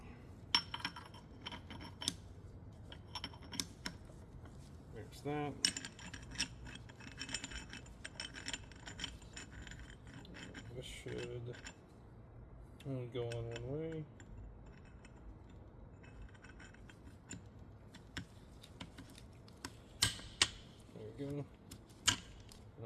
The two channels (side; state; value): both; identical; correlation 1.00